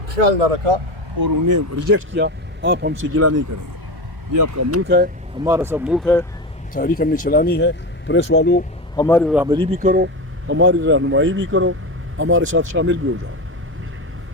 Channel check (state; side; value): normal; both; correlation 0.21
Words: خیال نہ رکھا اور انہیں ریجیکٹ کیا, آپ ہم سے گلہ نہیں کریں گے. یہ آپ کا ملک ہے, ہمارا سب ملک ہے. تاریخ ہم نے چلانی ہے. پریس والوں ہماری رہبری بھی کرو, ہماری رہنمائی بھی کرو, ہمارے ساتھ شامل بھی ہو جاؤ.